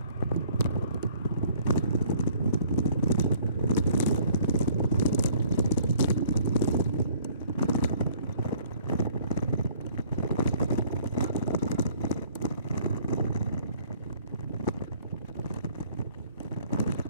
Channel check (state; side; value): inverted; both; correlation -0.56